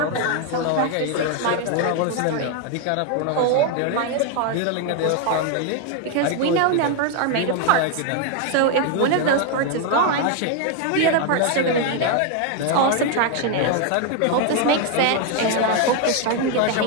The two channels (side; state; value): both; different; correlation 0.01